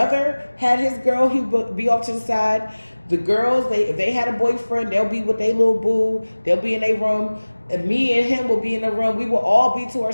had his girl. He would be off to the side. The girls, if they had a boyfriend, they'll be with their little boo. They'll be in their room. And me and him will be in the room. We will all be to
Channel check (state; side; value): inverted; both; correlation -1.00